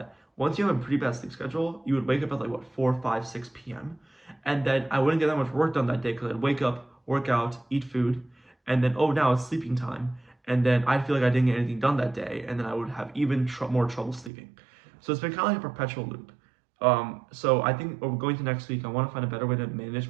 once you have a pretty bad sleep schedule, you would wake up at like what 4, 5, 6 p.m. And then I wouldn't get that much work done that day because I'd wake up, work out, eat food, and then now it's sleeping time. And then I'd feel like I didn't get anything done that day, and then I would have even more trouble sleeping. So it's been kind of like a perpetual loop. So I think going to next week, I want to find a better way to manage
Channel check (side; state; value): left; drops out; at 14.3 s